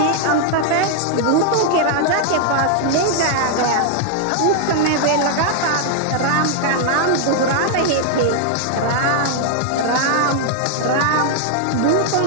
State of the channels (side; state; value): both; different; correlation 0.00